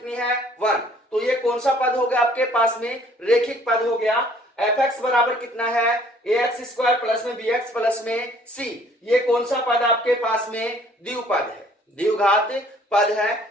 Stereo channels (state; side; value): normal; both; correlation 0.58